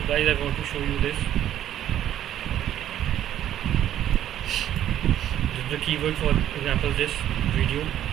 guys, I want to show you this. This is the keyword, for example, this video.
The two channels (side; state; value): left; quieter; 11.4 dB